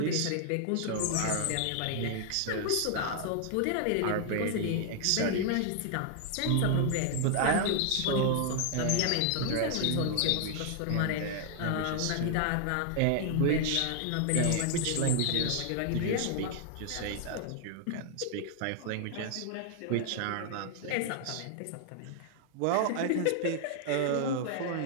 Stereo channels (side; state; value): both; different; correlation 0.00